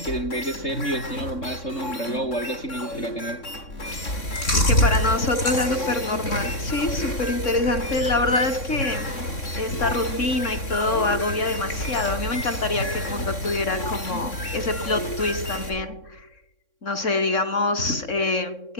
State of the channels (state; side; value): late; right; 3.6 ms